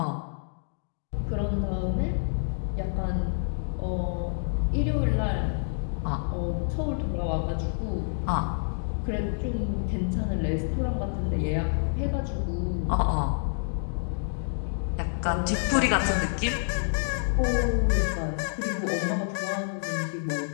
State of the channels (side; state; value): right; silent; digital silence